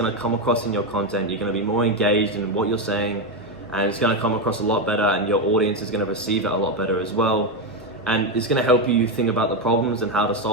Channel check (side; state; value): both; normal; correlation 0.09